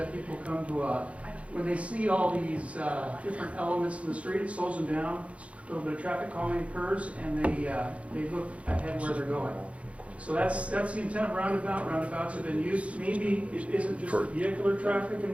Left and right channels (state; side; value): late; left; 0.063 ms